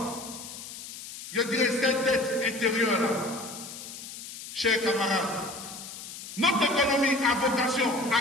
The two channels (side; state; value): left; noise; hiss, 12 dB below the sound